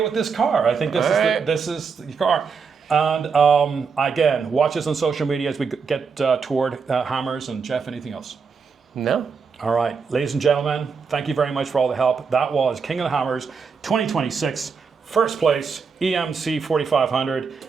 with this car. I think this is the car. And again, watch us on social media as we get toward Hammers. And Jeff, anything else? No. All right, ladies and gentlemen, thank you very much for all the help. That was King of the Hammers 2026, first place, EMC 4500.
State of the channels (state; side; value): quieter; left; 5.5 dB